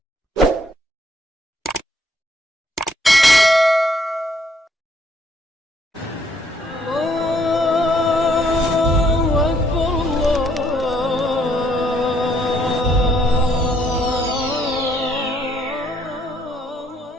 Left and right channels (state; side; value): normal; both; correlation 0.67